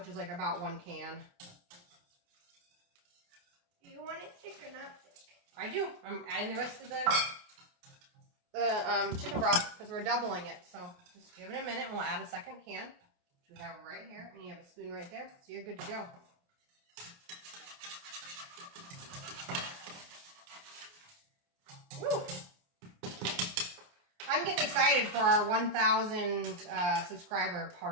is like about 1 can. Do you want it thick or not thick? I do. I'm adding the rest of the chicken broth because we're doubling it. So just give it a minute and we'll add a 2nd can, which we have right here. And you have a spoon right there, so you're good to go. Woo! I'm getting excited for our 1,000 subscriber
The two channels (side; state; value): left; late; 28 ms